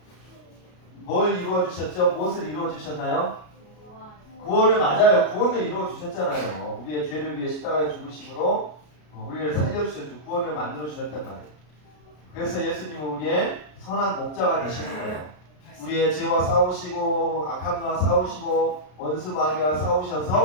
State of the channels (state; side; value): late; right; 33 ms